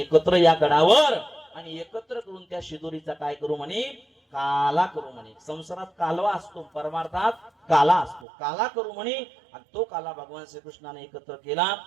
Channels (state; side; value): drops out; left; at 8.2 s